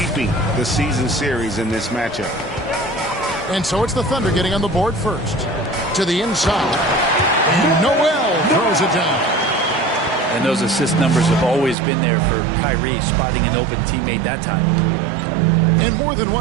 the season series in this matchup. And so it's the Thunder getting on the board first. To the inside. And Noel throws it down. And those assist numbers have always been there for Kyrie, spotting an open teammate that time. And more than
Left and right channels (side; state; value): left; drops out; at 11.8 s